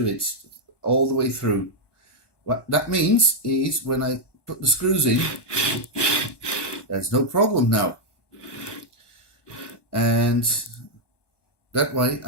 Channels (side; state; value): right; late; 1.2 ms